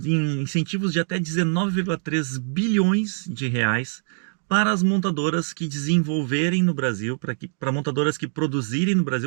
de até 19,3 bilhões de reais para as montadoras que desenvolverem no Brasil, para montadoras que produzirem no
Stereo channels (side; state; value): left; silent; digital silence